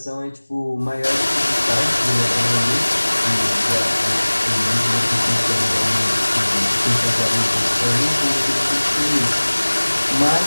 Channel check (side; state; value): both; inverted; correlation -1.00